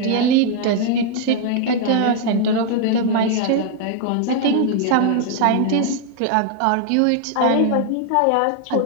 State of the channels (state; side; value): different; both; correlation 0.00